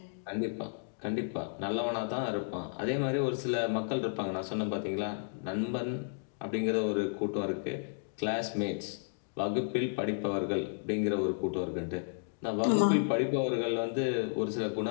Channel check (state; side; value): silent; right; digital silence